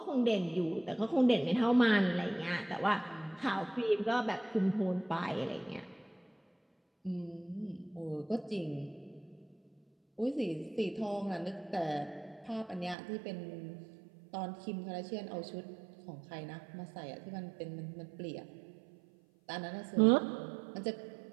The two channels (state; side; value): drops out; left; at 13.0 s